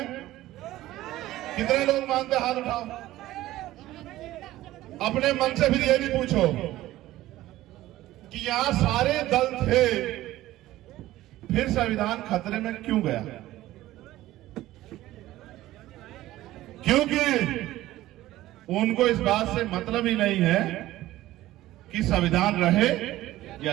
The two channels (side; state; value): left; quieter; 15.7 dB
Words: कितने लोग मानते? हाथ उठाओ। अपने मन से फिर ये भी पूछो कि यहां सारे दल थे, फिर संविधान खतरे में क्यों गया? क्योंकि उनको इस बात से मतलब ही नहीं है कि संविधान रहे या